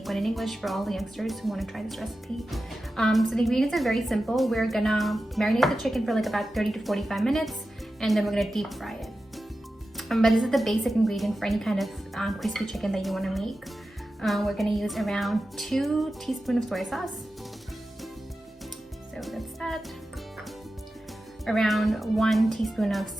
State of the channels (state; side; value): normal; both; correlation 0.93